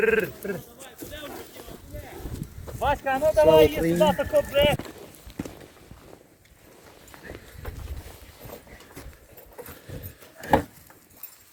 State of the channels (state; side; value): identical; both; correlation 1.00